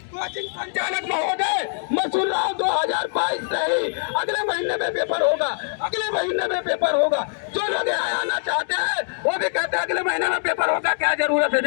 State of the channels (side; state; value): right; silent; digital silence